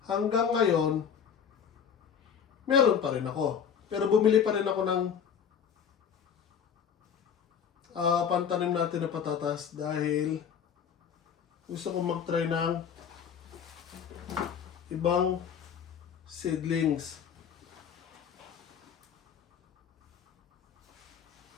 hanggang ngayon, meron pa rin ako. Pero bumili pa rin ako ng pantanim natin na patatas dahil gusto kong mag-try ng ibang seedlings.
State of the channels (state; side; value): quieter; right; 7.6 dB